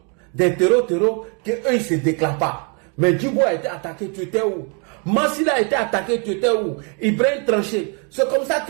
des terreaux, qu'eux ils ne se déclarent pas. Mais Djibo a été attaqué, tu étais où? Massila a été attaqué, tu étais où? Ibrahim tranché. C'est comme ça que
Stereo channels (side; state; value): left; quieter; 36.4 dB